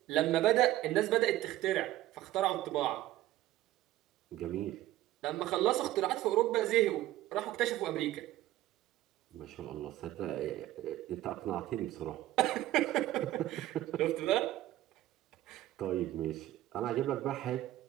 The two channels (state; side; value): quieter; left; 14.9 dB